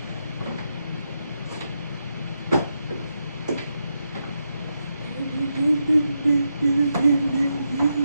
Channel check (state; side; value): inverted; both; correlation -0.85